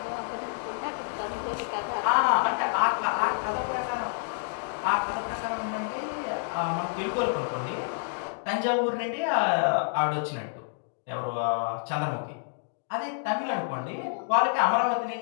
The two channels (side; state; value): right; silent; digital silence